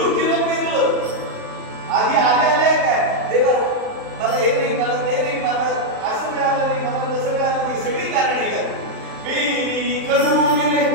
जिरं पेरलं, आधी आले काय, देवा मला हे नाही, मला ते नाही, मला असं मिळालं नाही, मला तसं मिळालं नाही, सगळी कारणे काय. पेरी कडू जिरे,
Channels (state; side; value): late; left; 38 ms